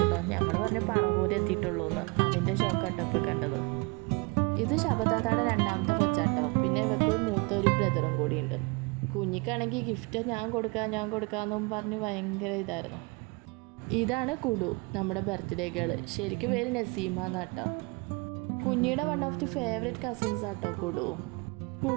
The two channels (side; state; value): left; quieter; 29.1 dB